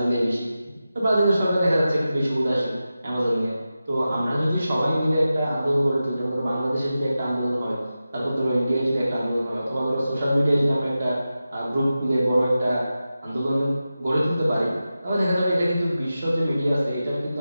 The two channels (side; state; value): both; inverted; correlation -0.93